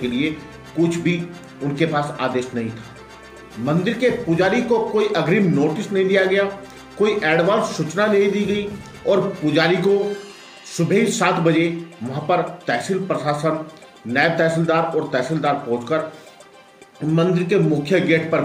लिए कुछ भी उनके पास आदेश नहीं था। मंदिर के पुजारी को कोई अग्रिम नोटिस नहीं दिया गया, कोई एडवांस सूचना नहीं दी गई और पुजारी को सुबह ही 7 बजे वहां पर तहसील प्रशासन, नायब तहसीलदार और तहसीलदार पहुंचकर मंदिर के मुख्य गेट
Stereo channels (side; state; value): both; identical; correlation 1.00